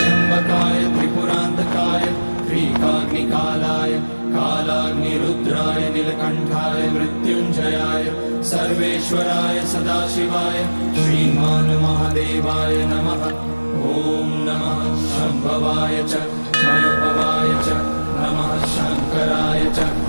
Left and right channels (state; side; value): inverted; both; correlation -1.00